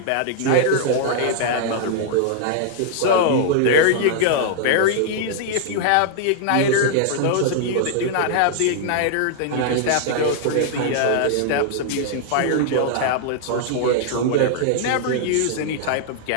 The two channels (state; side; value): different; both; correlation 0.00